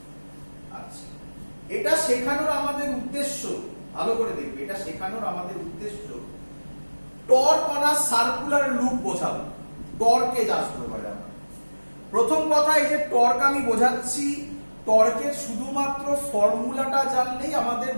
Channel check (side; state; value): both; inverted; correlation -1.00